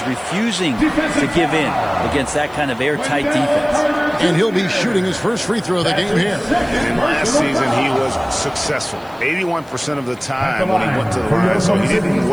refusing to give in against that kind of airtight defense. And he'll be shooting his first free throw of the game here. And last season, he was successful 81% of the time when he went to the line, so he didn't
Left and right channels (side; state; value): left; noise; hiss, 29 dB below the sound